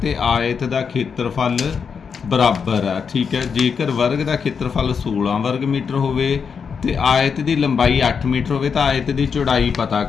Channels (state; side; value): quieter; right; 6.2 dB